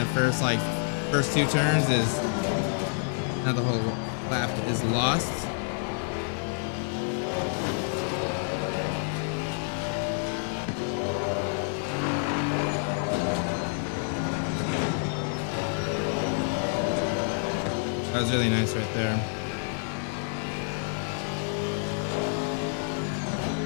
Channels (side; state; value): right; silent; 59 dB below the other